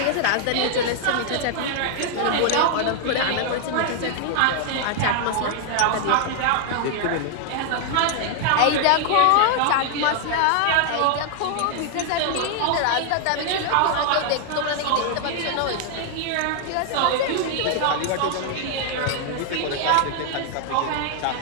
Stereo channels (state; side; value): different; both; correlation 0.00